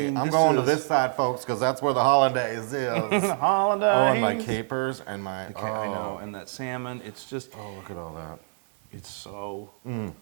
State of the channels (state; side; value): silent; left; digital silence